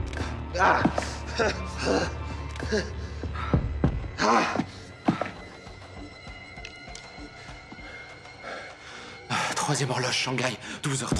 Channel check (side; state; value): both; identical; correlation 1.00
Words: Troisième horloge Shanghai,